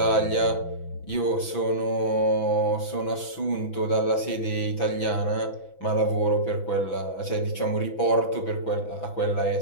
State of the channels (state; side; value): late; right; 6.0 ms